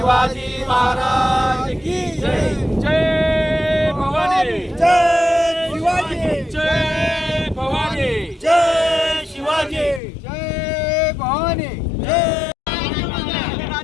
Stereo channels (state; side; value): drops out; right; at 10.0 s